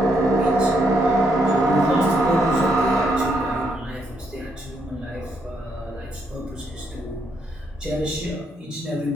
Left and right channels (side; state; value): both; normal; correlation 0.76